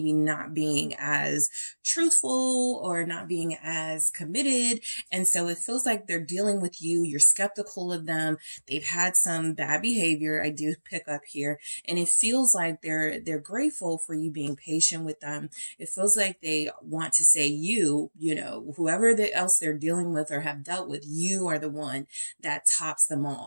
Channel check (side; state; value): both; inverted; correlation -1.00